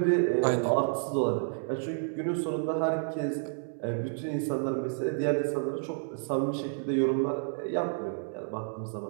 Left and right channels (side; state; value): left; silent; digital silence